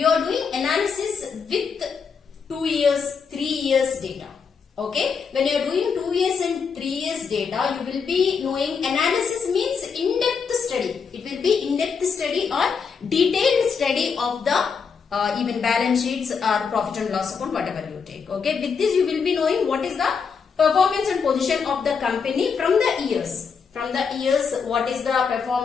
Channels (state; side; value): quieter; right; 5.9 dB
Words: are doing analysis with 2 years, 3 years data. Okay, when you are doing 2 years and 3 years data, you will be knowing analysis means in-depth study. It will be in-depth study or detailed study of the even balance sheets or profit and loss account, whatever you take. Okay, with this you will be knowing what is the performance and position of the company from the years. From the years, what is the